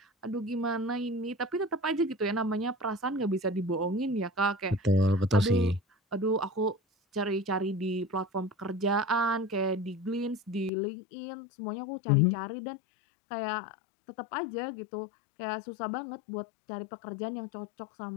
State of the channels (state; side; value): drops out; right; at 10.7 s